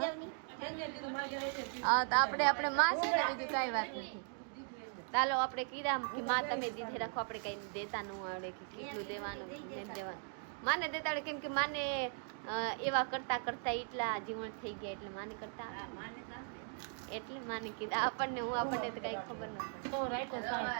જાવ. હા તો આપણે માં છે ને બીજું કઈ વાત નથી. ચાલો આપણે કીધા કે માં તમે દીધે રાખો, આપણે કઈ દેતા ન આવડે કે કેટલું દેવાનું નહીં દેવાનું. માને દેતા આવડે કેમ કે માને એવા કરતા કરતા એટલા જીવન થઈ ગયા એટલે માને કરતા એટલે માને કીધા. આપણને તો કઈ ખબર ન પડે. તો રાખ્યો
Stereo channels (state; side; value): silent; left; 52 dB below the other